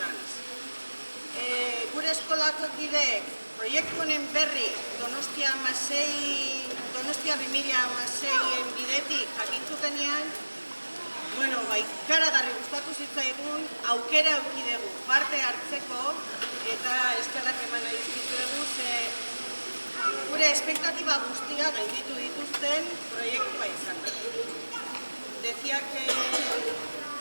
Gure eskolako kideek proiektu honen berri Donostia 2006-en bidetik jakintutenean, ikaragarri gustatu zitzaigun, aukera eduki dugu parte hartzeko eta eskerrak eman nahi dizkizuegu, gure espektatiba guztia gainditu dituzten proiektua izan. Decía que,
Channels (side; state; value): both; inverted; correlation -1.00